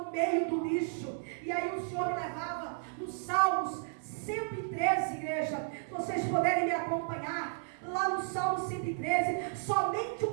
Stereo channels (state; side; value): silent; left; 56 dB below the other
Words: meio do lixo. E aí o Senhor me levava nos Salmos 113, igreja. Se vocês puderem me acompanhar lá no Salmo 113, somente um